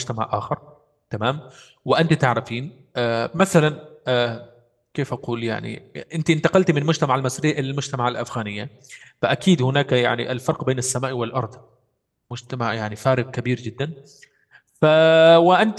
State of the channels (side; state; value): both; identical; correlation 1.00